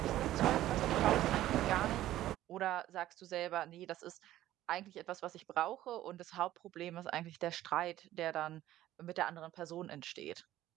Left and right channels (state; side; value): quieter; left; 14.1 dB